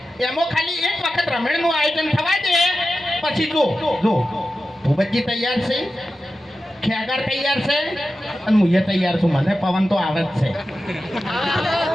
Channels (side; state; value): both; normal; correlation 0.92